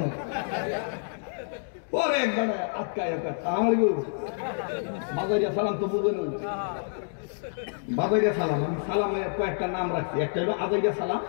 না পরে একবার আটকায় আমার বাজারিয়া সালাম তো বুঝে নই বাজারিয়া সালাম আমি সালামে কয়েকটা নাম রাখছি একটা হলো আজাইয়া সালাম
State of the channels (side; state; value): right; silent; digital silence